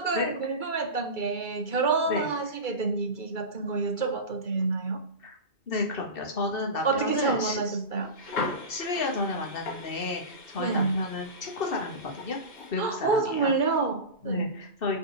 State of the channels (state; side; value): late; right; 2.3 ms